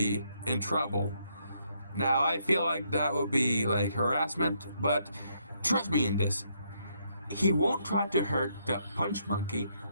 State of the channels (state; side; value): inverted; both; correlation -0.74